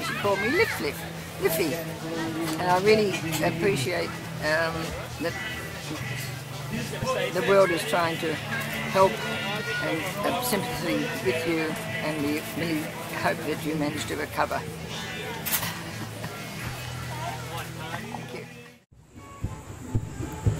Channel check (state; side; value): identical; both; correlation 1.00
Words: She called me Liffy. And I really appreciate that the world is trying to help and have sympathy with you, and we really hope that you manage to recover. Thank you.